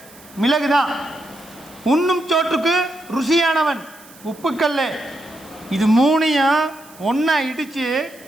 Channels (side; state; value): right; noise; hiss, 23 dB below the sound